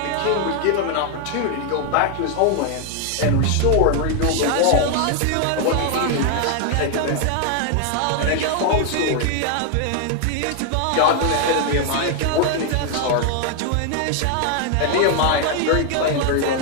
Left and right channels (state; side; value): different; both; correlation 0.00